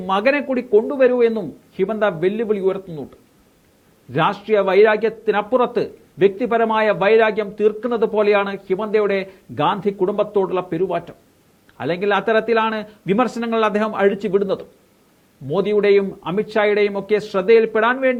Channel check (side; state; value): both; identical; correlation 1.00